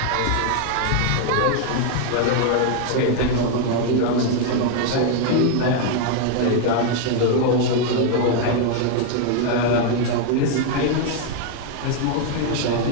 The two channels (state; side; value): different; both; correlation 0.00